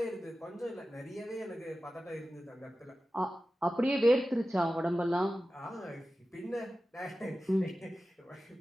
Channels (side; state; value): both; normal; correlation 0.94